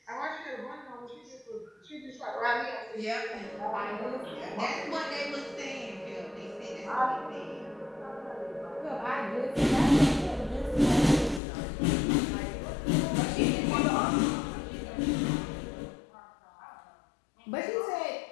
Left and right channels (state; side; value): drops out; right; at 11.4 s